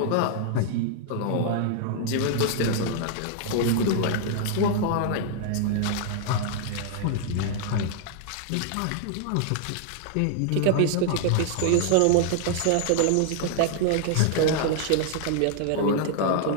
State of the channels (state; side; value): different; both; correlation 0.00